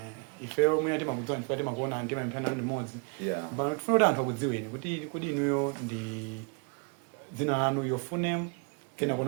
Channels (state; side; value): quieter; left; 34.9 dB